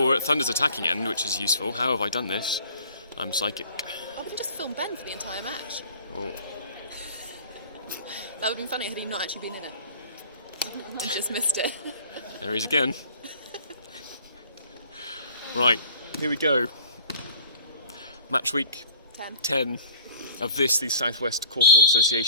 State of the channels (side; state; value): both; inverted; correlation -0.48